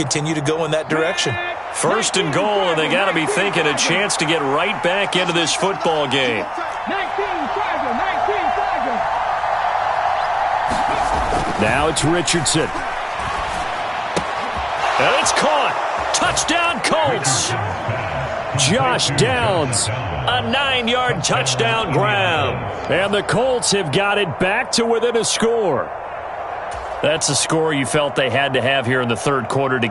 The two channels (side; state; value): both; identical; correlation 1.00